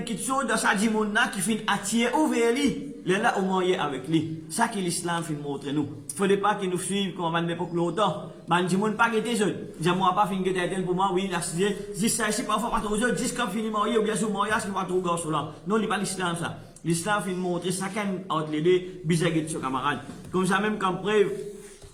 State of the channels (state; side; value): identical; both; correlation 1.00